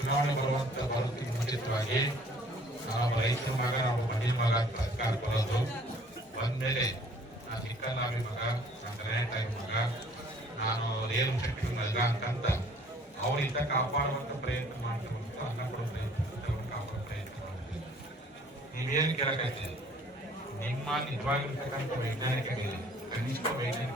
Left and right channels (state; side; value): normal; both; correlation 0.56